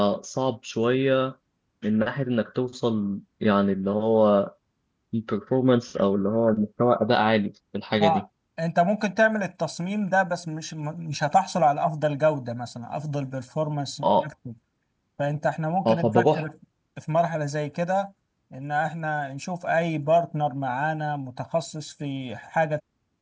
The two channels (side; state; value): both; identical; correlation 1.00